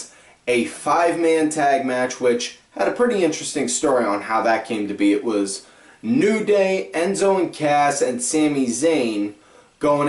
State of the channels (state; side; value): identical; both; correlation 1.00